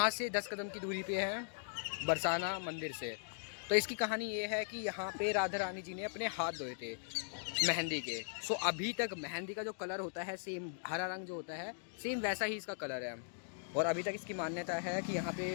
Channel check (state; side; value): silent; right; digital silence